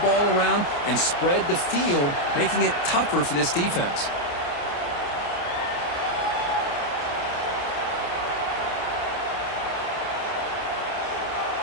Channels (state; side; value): late; right; 29 ms